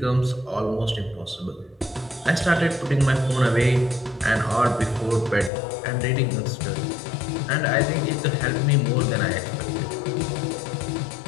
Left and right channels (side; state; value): right; drops out; at 5.5 s